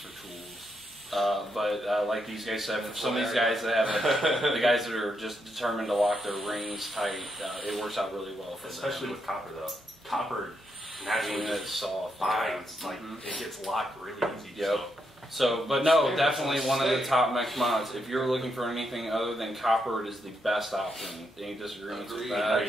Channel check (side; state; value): both; normal; correlation 0.80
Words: tools. But like these guys said, for some of these guys that have the guys that are just determined to lock their rings tight, it works out really well for them. Especially with copper, though. Copper naturally It's soft. binds. Like, it gets locked really easy. Yep. So, but no, definitely one of the top mech mods. If you're looking for anything other than copper, it is the best option. Any disagreements with that?